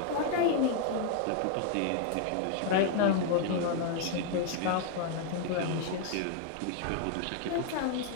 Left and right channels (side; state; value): both; different; correlation 0.00